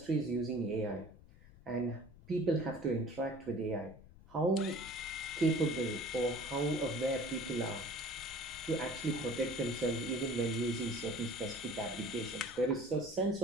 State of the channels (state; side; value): noise; left; rumble, 21 dB below the sound